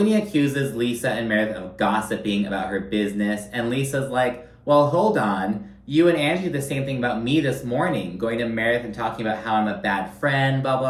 accuses Lisa and Meredith of gossiping about her business, and Lisa's like, well, hold on. You and Angie did the same thing about me this morning, going to Meredith and talking about how I'm a bad friend, blah,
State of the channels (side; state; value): both; identical; correlation 1.00